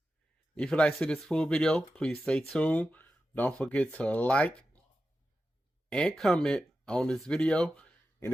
If you'd like to see this full video, please stay tuned. Don't forget to like and comment on this video. And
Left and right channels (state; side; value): normal; both; correlation 0.91